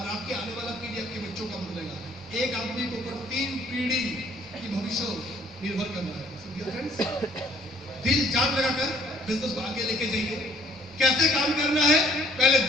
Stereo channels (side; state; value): both; normal; correlation 0.60